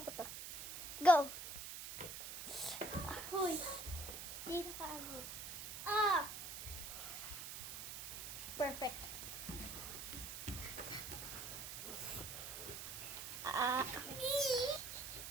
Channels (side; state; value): right; noise; hiss, 7 dB below the sound